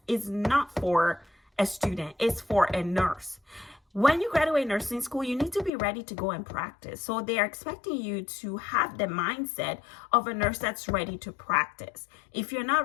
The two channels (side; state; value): right; drops out; at 5.7 s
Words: is not for a student, it's for a nurse. When you graduate nursing school, you need to be ready to go and practice. So they are expecting you to have the mindset of a nurse that's ready to practice. If you're